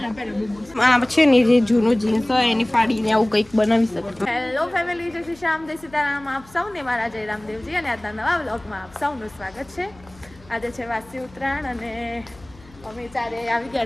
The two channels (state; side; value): noise; left; hum, 24 dB below the sound